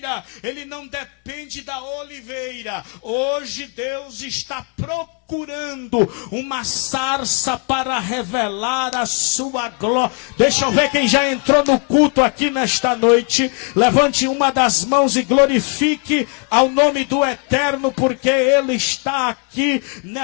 ele não depende da oliveira. Hoje Deus está procurando uma sarça para revelar a sua glória. Deixa eu ver quem já entrou no culto aqui nesta noite. Levante uma das mãos e glorifique ao nome do Eterno, porque Ele está aqui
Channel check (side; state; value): right; quieter; 37.1 dB